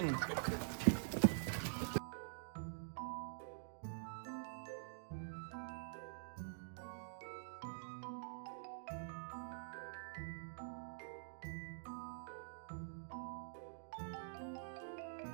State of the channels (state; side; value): silent; left; digital silence